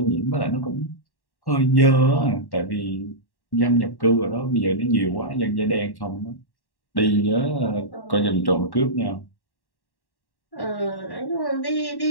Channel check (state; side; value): late; right; 1.1 ms